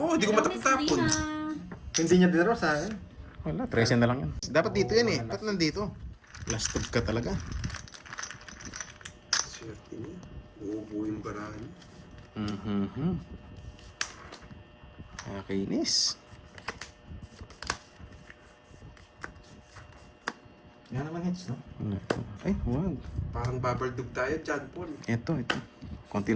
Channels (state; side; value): identical; both; correlation 1.00